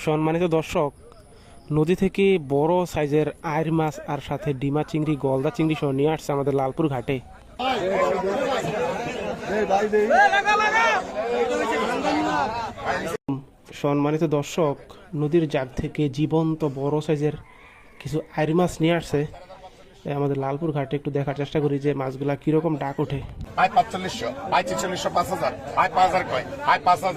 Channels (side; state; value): both; identical; correlation 1.00